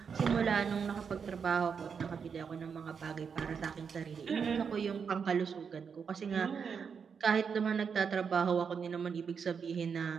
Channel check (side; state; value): left; quieter; 6.4 dB